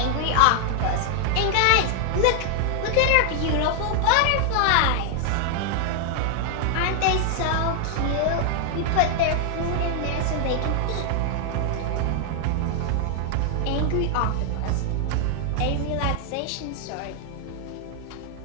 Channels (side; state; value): both; different; correlation 0.00